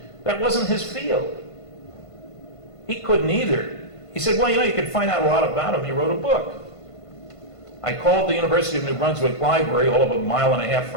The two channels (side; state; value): right; late; 1.5 ms